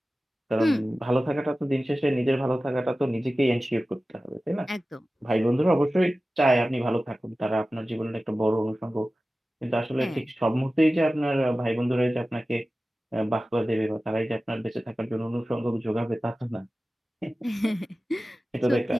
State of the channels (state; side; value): normal; both; correlation 0.96